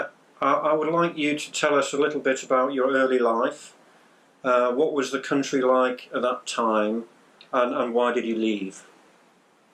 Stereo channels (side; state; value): both; identical; correlation 1.00